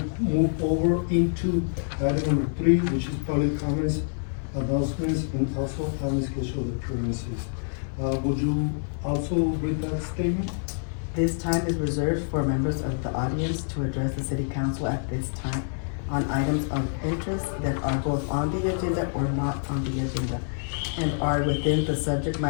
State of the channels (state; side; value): silent; right; 56 dB below the other